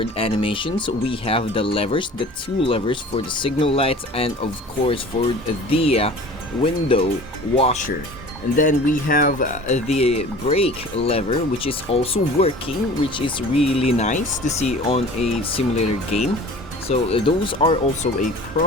animations. We have the levers, the two levers for the signal lights, and of course for the window washer. And then we have the brake lever, which is also working, which is really nice to see on a simulator game. So those are also a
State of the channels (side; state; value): both; normal; correlation 0.43